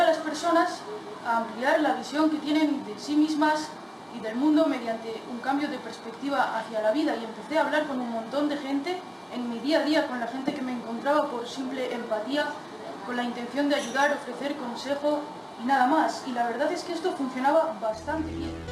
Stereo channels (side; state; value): both; identical; correlation 1.00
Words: a las personas a ampliar la visión que tienen de sí mismas y del mundo mediante un cambio de perspectiva hacia la vida, y empecé a hablar con un montón de gente en mi día a día, con la gente que me encontraba por simple empatía, con la intención de ayudar, ofrecer consejo y nada más. Y la verdad es que esto funcionaba bastante bien.